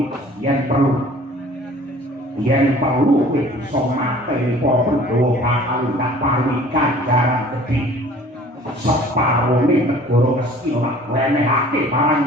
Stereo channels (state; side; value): normal; both; correlation 0.49